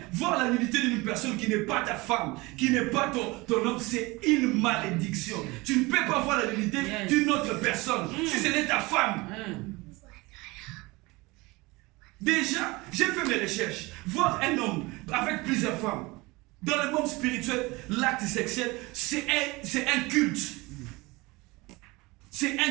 voir la nudité d'une personne qui n'est pas ta femme, qui n'est pas ton homme, c'est une malédiction. Tu ne peux pas voir la nudité d'une autre personne si ce n'est ta femme. Déjà, j'ai fait mes recherches. Voir un homme avec plusieurs femmes, dans le monde spirituel, l'acte sexuel, c'est un culte. C'est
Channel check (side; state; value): left; quieter; 23.2 dB